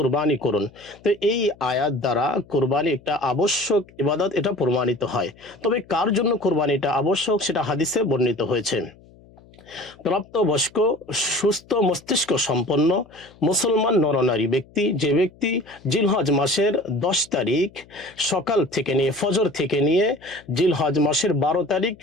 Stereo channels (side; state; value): left; noise; hum, 26 dB below the sound